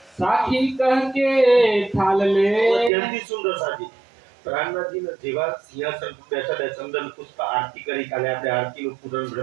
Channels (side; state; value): left; drops out; at 2.9 s